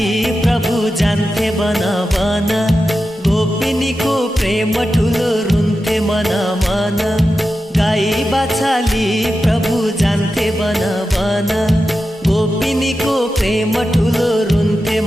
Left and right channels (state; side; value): normal; both; correlation 0.91